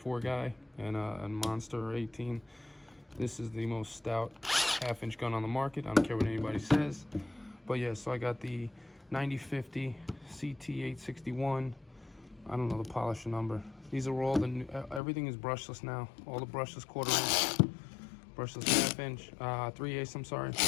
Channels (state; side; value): drops out; right; at 15.0 s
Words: guy and a Monster 18. This is the most stout half-inch gun on the market. I don't care what anybody says. But yeah, so I got the 9050 CT861. I don't know the polisher number. These are all everything is brushless now. All the brushless 1/4 inch, brushless half-inch, 3/8, I'm sorry,